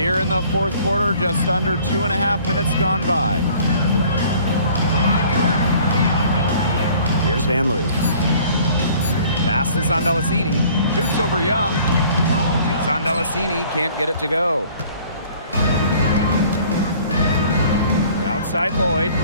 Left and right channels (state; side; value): inverted; both; correlation -0.53